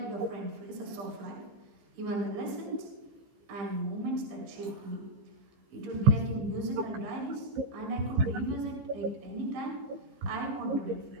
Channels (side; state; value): left; late; 15 ms